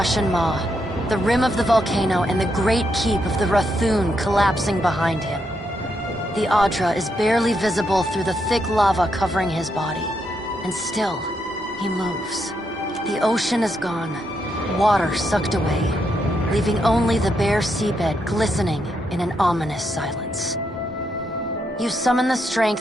Maw, the rim of the volcano and the great keep of the Rathun collapsing behind him. The Adra is barely visible through the thick lava covering his body, and still, he moves. The ocean is gone, water sucked away, leaving only the bare seabed glistening in an ominous silence. You summon the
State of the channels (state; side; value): normal; both; correlation 0.80